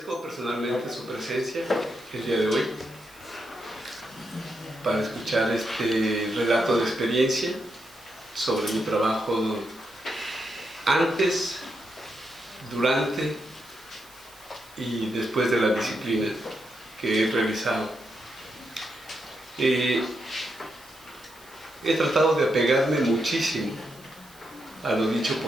personalmente su presencia el día de hoy para escuchar este relato de experiencia sobre mi trabajo antes, durante y después de la disciplina que he realizado. He tratado de apegarme muchísimo a lo dicho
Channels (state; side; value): noise; right; hiss, 25 dB below the sound